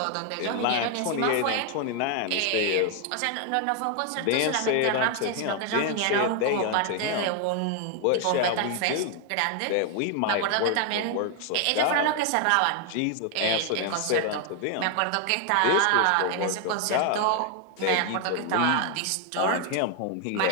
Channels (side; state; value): both; different; correlation 0.00